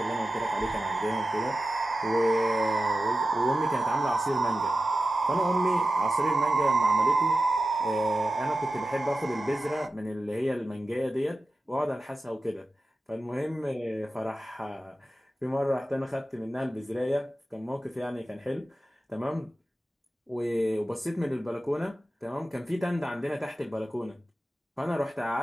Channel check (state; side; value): normal; both; correlation 0.93